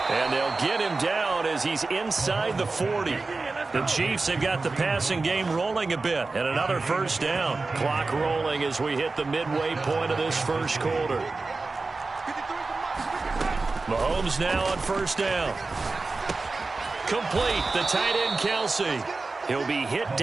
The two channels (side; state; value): left; quieter; 3.7 dB